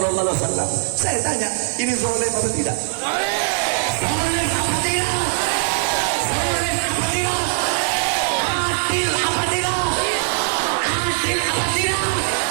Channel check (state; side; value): silent; left; 65 dB below the other